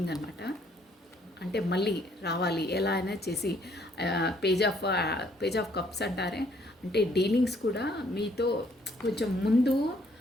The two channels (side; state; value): both; normal; correlation 0.65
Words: అనమాట. అంటే మళ్ళీ రావాలి ఎలా అయినా చేసి. పేజ్ ఆఫ్ కప్స్ అంటారే, అంటే డీలింగ్స్ కూడా మీతో కొంచెం ముందు